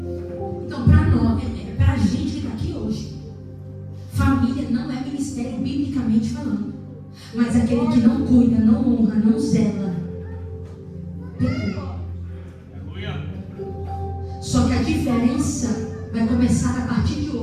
Então, para nós, para a gente que está aqui hoje, família não é ministério biblicamente falando. Mas aquele que não cuida, não honra, não zela, pecou. Só que a diferença vai começar a partir de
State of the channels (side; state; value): both; identical; correlation 1.00